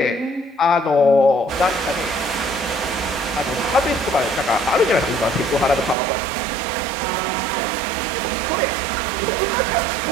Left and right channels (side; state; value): left; drops out; at 6.0 s